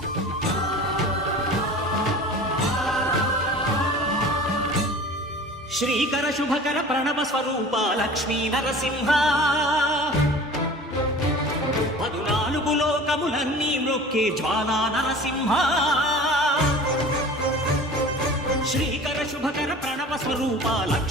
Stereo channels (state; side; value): normal; both; correlation 0.41